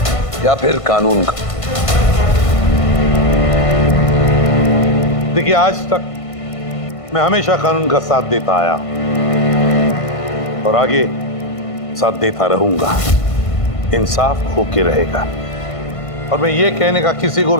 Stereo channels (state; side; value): late; right; 1.5 ms